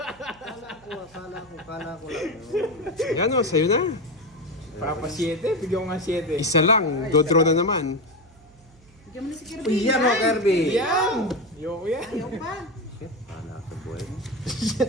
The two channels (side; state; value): right; noise; hum, 26 dB below the sound